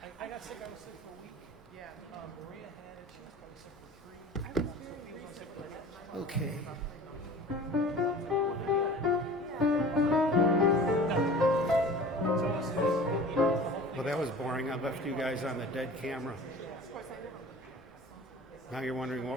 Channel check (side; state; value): both; normal; correlation 0.41